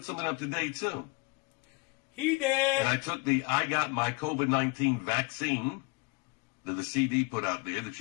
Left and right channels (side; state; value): right; quieter; 26.5 dB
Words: something up today, too. He did. And I took I got my COVID-19 vaccine that the CD put out there that